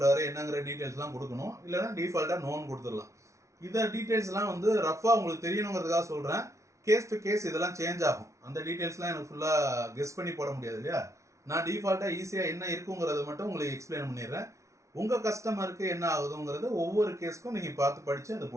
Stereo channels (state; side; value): late; left; 0.14 ms